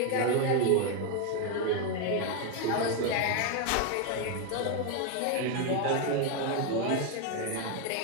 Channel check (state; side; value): different; both; correlation 0.01